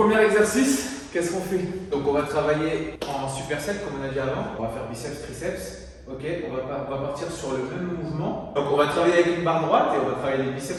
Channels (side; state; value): both; identical; correlation 1.00